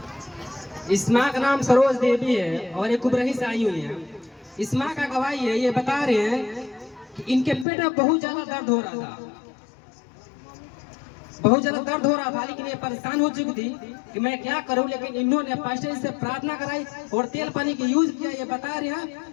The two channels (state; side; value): drops out; right; at 7.7 s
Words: इस माँ का नाम सरोज देवी है और ये कुबरही से आई हुई है। इस माँ का गवाही है, ये बता रहे हैं कि इनके पेट में बहुत ज्यादा दर्द हो रहा था, बहुत ज्यादा दर्द हो रहा था, लेकिन ये परेशान हो चुकी थी कि मैं क्या करूं। लेकिन इन्होंने पास्टर से प्रार्थना कराई और तेल पानी की यूज किया। ये बता रहे हैं